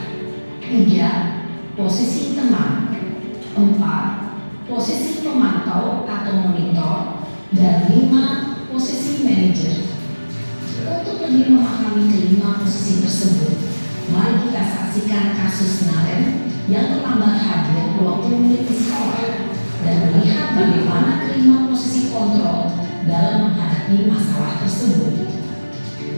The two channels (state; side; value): inverted; both; correlation -1.00